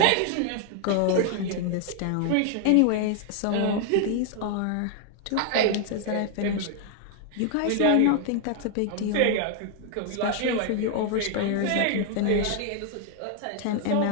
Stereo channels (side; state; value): both; different; correlation 0.00